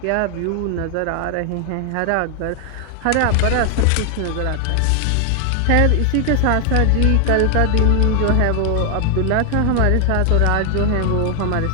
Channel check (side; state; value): both; different; correlation 0.00